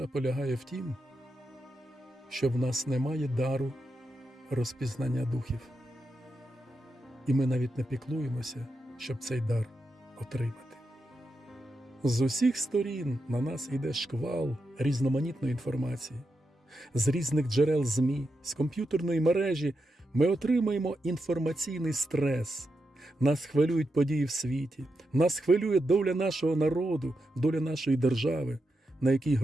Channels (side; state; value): both; normal; correlation 0.86